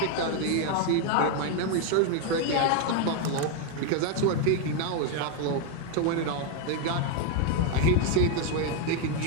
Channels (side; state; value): both; different; correlation 0.01